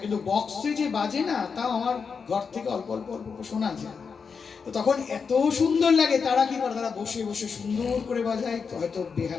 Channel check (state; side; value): quieter; right; 5.7 dB